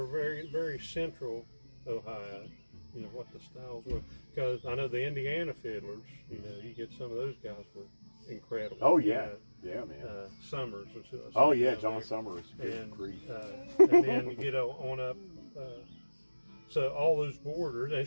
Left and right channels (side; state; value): both; inverted; correlation -1.00